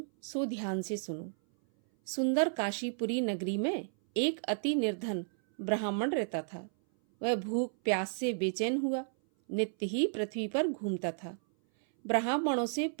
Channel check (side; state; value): left; silent; 56 dB below the other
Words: सो ध्यान से सुनो। सुंदर काशीपुरी नगरी में एक अति निर्धन ब्राह्मण रहता था। वह भूख प्यास से बेचैन हुआ नित्य ही पृथ्वी पर घूमता था। ब्राह्मणों से